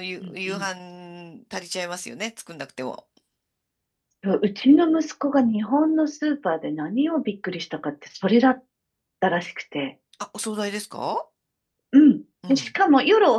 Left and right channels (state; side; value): identical; both; correlation 1.00